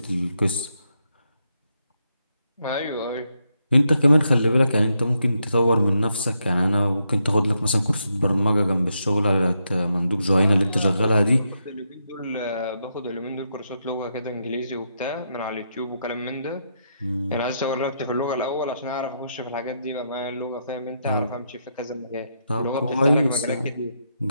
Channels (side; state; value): both; inverted; correlation -0.81